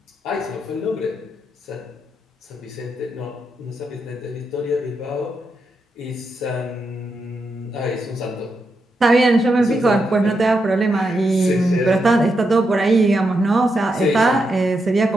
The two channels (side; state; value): both; normal; correlation 0.84